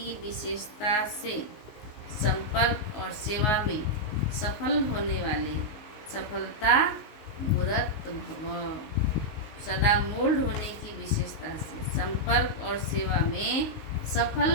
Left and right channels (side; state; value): right; late; 19 ms